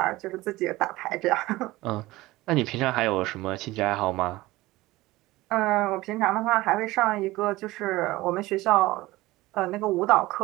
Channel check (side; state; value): left; quieter; 18.9 dB